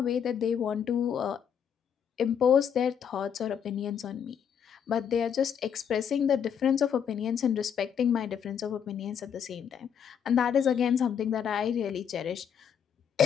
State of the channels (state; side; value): quieter; right; 8.0 dB